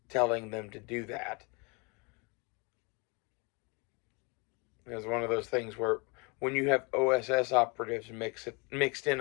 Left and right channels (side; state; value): right; quieter; 30.6 dB